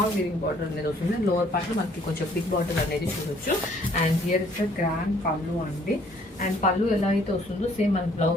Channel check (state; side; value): normal; both; correlation 0.61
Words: వీవింగ్ బార్డర్ అనేది వస్తుంది. అండ్ లోవర్ పార్ట్ లో మనకి కొంచెం బిగ్ బార్డర్ అనేది చూడొచ్చు. And here is the grand pallu అండి. అండ్ పళ్ళు ఎలా అయితే వస్తుందో సేమ్ మన